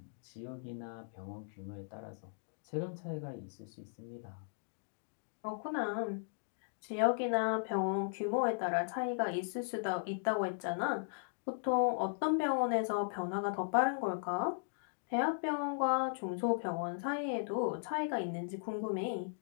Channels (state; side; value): silent; right; digital silence